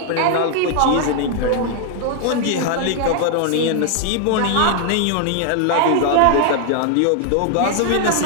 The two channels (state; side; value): different; both; correlation 0.00